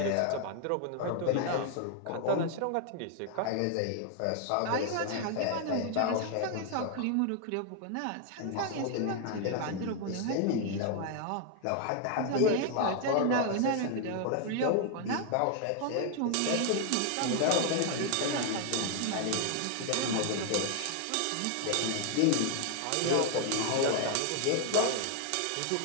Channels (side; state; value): both; different; correlation 0.00